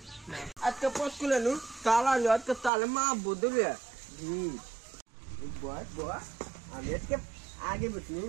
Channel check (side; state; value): left; drops out; at 2.7 s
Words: আজকে পোস্ট খুলে নু তালা আজকে তালে মা বদলে আমি আজকে আগে বসি